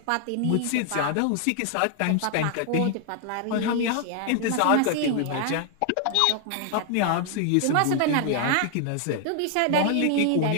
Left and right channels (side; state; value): both; different; correlation 0.00